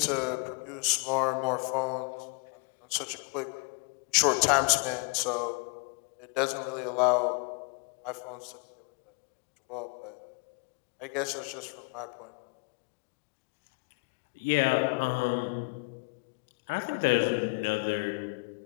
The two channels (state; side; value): quieter; right; 32.0 dB